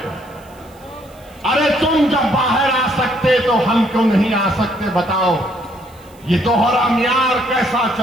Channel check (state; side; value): noise; right; hiss, 28 dB below the sound